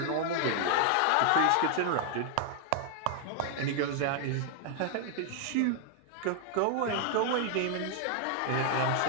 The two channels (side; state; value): both; different; correlation 0.00